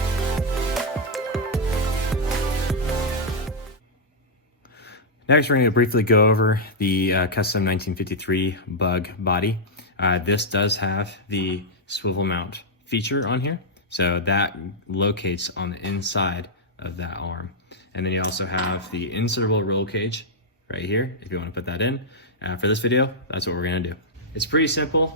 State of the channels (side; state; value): both; normal; correlation -0.05